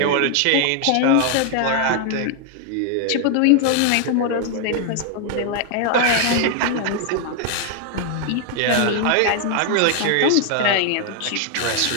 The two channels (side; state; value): both; different; correlation 0.00